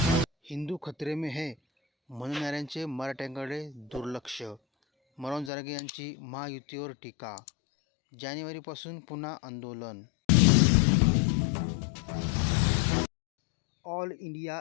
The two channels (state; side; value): drops out; right; at 5.5 s